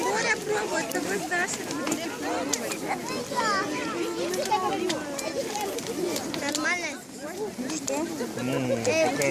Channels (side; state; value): both; identical; correlation 1.00